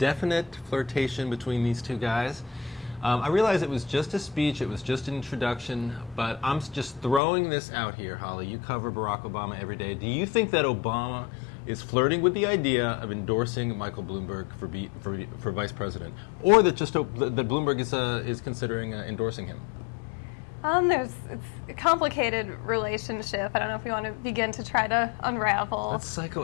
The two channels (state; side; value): drops out; right; at 7.2 s